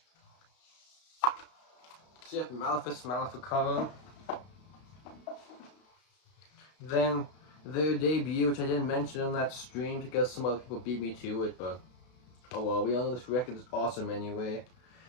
So you have Malefice Maleficarum. Then their debut, which I didn't mention on that stream because some other people beat me to it, but oh well, we all know this record is awesome anyway.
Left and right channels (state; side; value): late; right; 32 ms